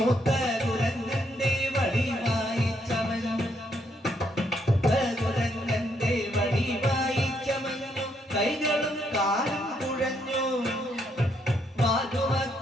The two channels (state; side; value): normal; both; correlation 0.74